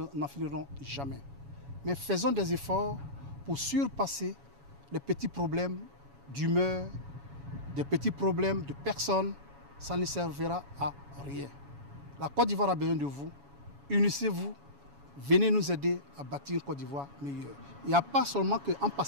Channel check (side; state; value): left; late; 7.1 ms